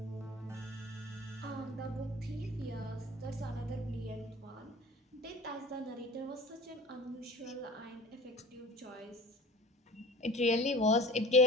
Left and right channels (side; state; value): both; normal; correlation 0.39